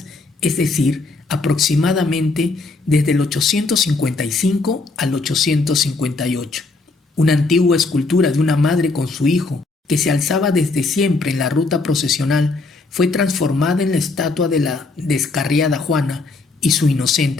es decir, aproximadamente desde el 855 al 858. Una antigua escultura de una madre con su hijo, que se alzaba desde siempre en la ruta procesional, fue transformada en la estatua de la descarriada Juana y su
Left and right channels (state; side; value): quieter; right; 3.6 dB